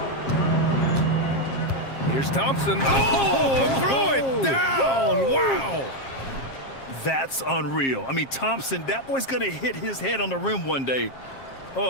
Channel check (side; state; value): right; late; 7.5 ms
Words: Here's Thompson. Oh, throw it down. Wow. That's unreal. I mean, Thompson, that boy's going to hit his head on the rim one day.